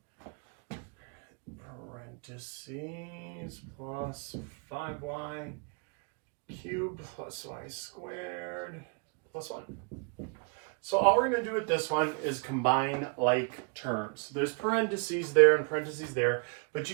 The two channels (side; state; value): left; quieter; 38.2 dB